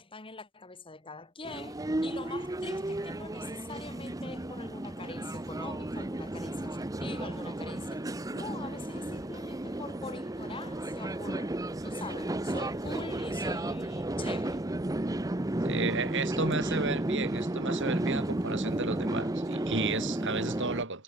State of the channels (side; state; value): both; normal; correlation 0.62